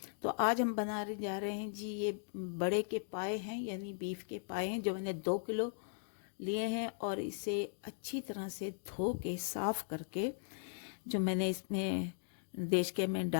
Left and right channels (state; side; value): silent; right; digital silence